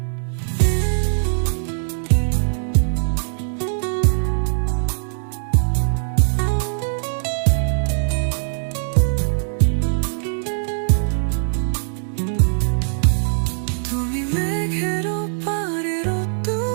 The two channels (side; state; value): left; silent; digital silence